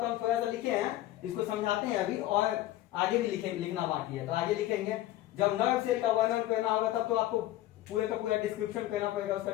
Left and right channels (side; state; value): right; quieter; 14.8 dB